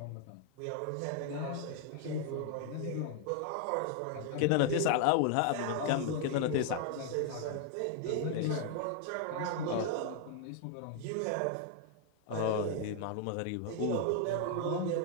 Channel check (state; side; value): different; both; correlation 0.00